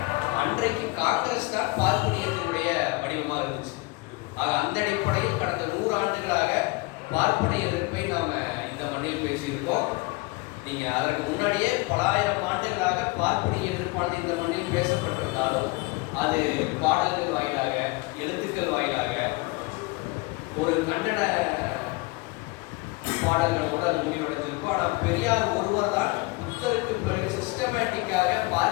அன்றைக்கு காங்கிரஸ் தான் பார்ப்பனியத்தினுடைய வடிவமாக இருந்துச்சு. அந்த அடிப்படையில் கடந்த 100 ஆண்டுகளாக பார்ப்பனிய எதிர்ப்பை நாம இந்த மண்ணில் பேசியிருக்கோம். நீங்க அதற்கு முன்னாடியே பல ஆயிரம் ஆண்டுகளாக பார்ப்பனிய எதிர்ப்பானது இந்த மண்ணில் பேசப்பட்டிருந்தாலும் அது பாடல்கள் வாயிலாக, எழுத்துக்கள் வாயிலாக, ஒரு கன்னட பாடல்களோடு அது முடிவடைஞ்சிருக்கும். ஆனால் பெரியார் ஒருவர் தான் புத்தருக்கு பிறகு சிஸ்டமேட்டிக்காக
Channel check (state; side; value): quieter; right; 23.9 dB